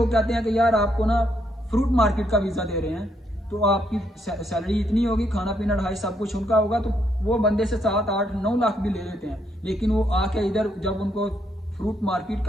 कहते हैं कि यार आपको ना फ्रूट मार्केट का वीज़ा दे रहे हैं, तो आपकी सैलरी इतनी होगी, खाना पीना ढाई सब कुछ उनका होगा, तो वो बंदे से 7, 8, 9 लाख भी ले लेते हैं। लेकिन वो आके इधर जब उनको फ्रूट मार्केट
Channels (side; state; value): both; normal; correlation 0.75